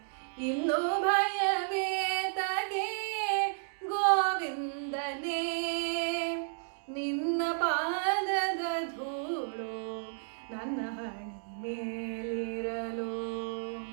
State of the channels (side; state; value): left; silent; digital silence